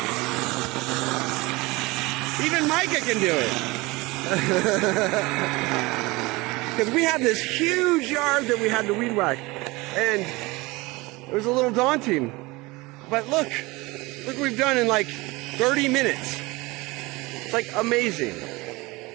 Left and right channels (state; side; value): quieter; left; 22.8 dB